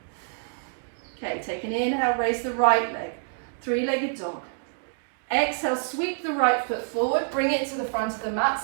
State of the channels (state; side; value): silent; left; digital silence